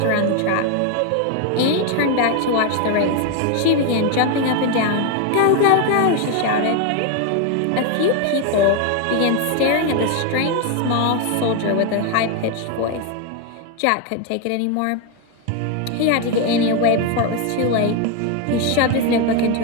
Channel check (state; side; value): different; both; correlation 0.01